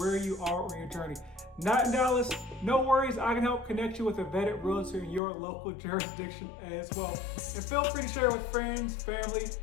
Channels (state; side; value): drops out; right; at 5.2 s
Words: you are on your journey. Not in Dallas? No worries, I can help connect you with a vetted realtor in your local jurisdiction as well. And feel free to share with friends, family,